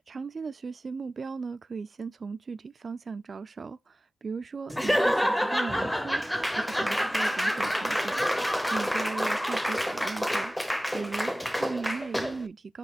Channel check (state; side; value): normal; both; correlation 0.97